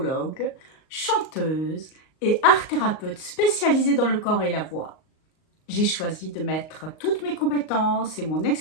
chanteuse et art-thérapeute spécialisée dans le corps et la voix. J'ai choisi de mettre toutes mes compétences et mon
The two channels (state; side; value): late; right; 38 ms